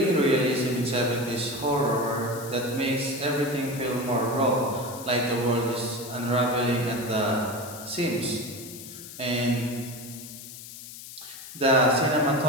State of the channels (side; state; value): left; noise; hiss, 13 dB below the sound